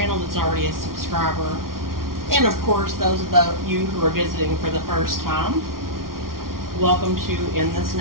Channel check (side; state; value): left; late; 0.92 ms